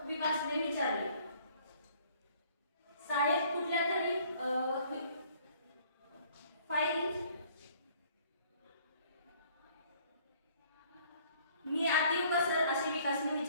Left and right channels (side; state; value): both; inverted; correlation -0.59